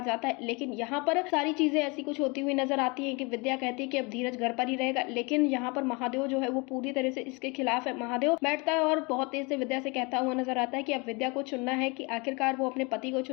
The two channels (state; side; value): quieter; right; 28.5 dB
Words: जाता है। लेकिन यहाँ पर सारी चीजें ऐसी कुछ होती हुई नजर आती हैं कि विद्या कहती है कि अब धीरज घर पर ही रहेगा, लेकिन यहाँ पर महादेव जो है वो पूरी तरह से इसके खिलाफ है। महादेव बैठता है और बहुत तेज से विद्या से कहता हुआ नजर आता है कि अब विद्या को चुनना है कि आखिरकार वो अपने पति को